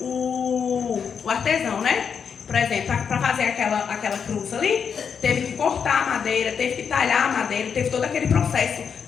o artesão, né? Por exemplo, para fazer aquela cruz ali, teve que cortar a madeira, teve que talhar a madeira, teve todo aquele processo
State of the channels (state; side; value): quieter; right; 6.8 dB